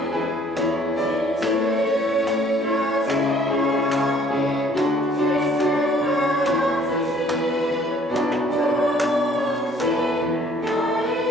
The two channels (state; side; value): normal; both; correlation 0.59